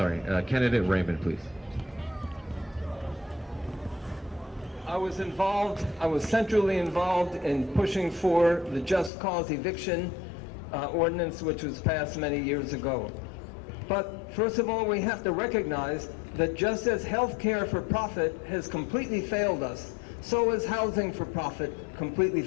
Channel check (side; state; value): right; drops out; at 9.1 s